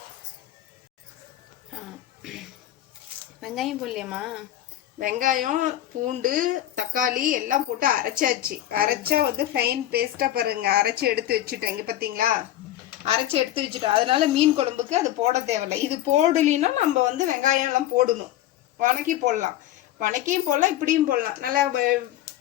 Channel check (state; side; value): quieter; right; 13.2 dB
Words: வெங்காயம் போடலையம்மா? வெங்காயம் பூண்டு தக்காளி எல்லாம் போட்டு அரைச்சாச்சு. அரைச்சா வந்து ஃபைன் பேஸ்ட்டாக பாருங்க, அரைச்சி எடுத்து வச்சுட்டேன். இங்கே பார்த்தீங்களா, அரைச்சி எடுத்து வச்சுட்டோம். அதனால மீன் குழம்புக்கு அது போட தேவையில்லை. இது போடலின்னா நம்ம வந்து வெங்காயம் எல்லாம் போடணும். வணக்கி போடலாம், வணக்கியும் போடலாம், இப்படியும் போடலாம். நல்லா